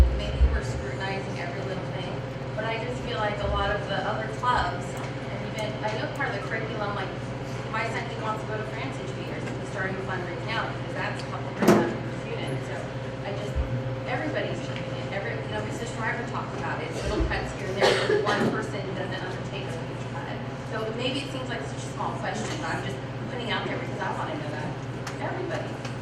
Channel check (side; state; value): both; identical; correlation 1.00